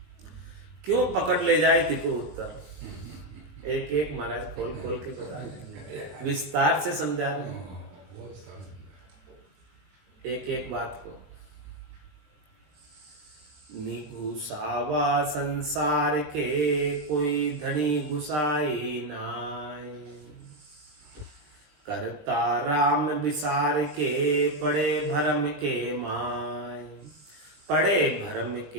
क्यों पकड़ ले जाए तिको उत्तर? एक एक महाराज खोल खोल के बता रहे, विस्तार से समझा रहे हैं एक एक बात को। निघुसावा संसार के कोई धनी घुसाई नाय, करता राम विसार के पड़े भरम के माय। पड़े भरम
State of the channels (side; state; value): left; late; 20 ms